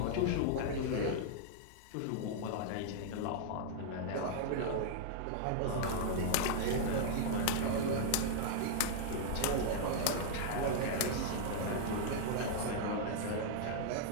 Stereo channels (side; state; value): both; different; correlation -0.01